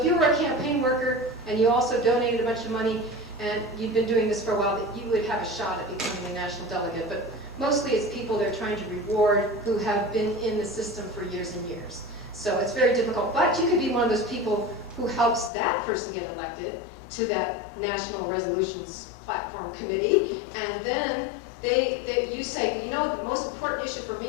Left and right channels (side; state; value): right; drops out; at 15.5 s